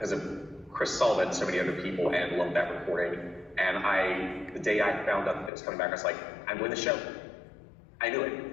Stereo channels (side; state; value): right; drops out; at 5.5 s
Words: of Chris Sullivan, so many other people, and loved that recording. And the day I found out that it was coming back, I was like, I'm doing the show. I knew it.